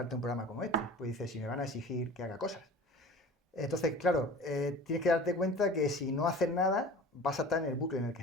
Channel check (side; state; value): both; normal; correlation 0.40